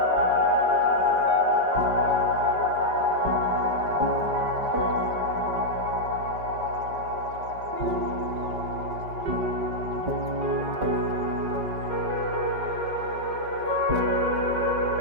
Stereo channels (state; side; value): late; left; 5.1 ms